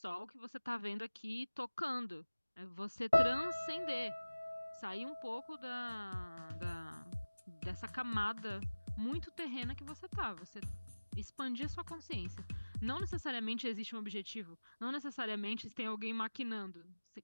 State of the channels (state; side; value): inverted; both; correlation -1.00